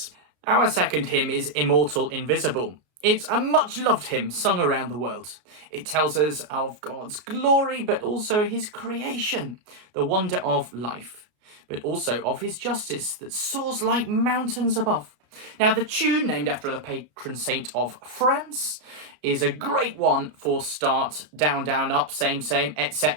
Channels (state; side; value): late; left; 33 ms